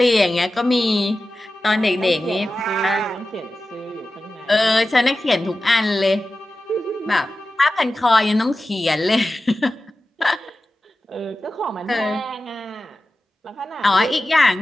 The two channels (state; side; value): normal; both; correlation 0.94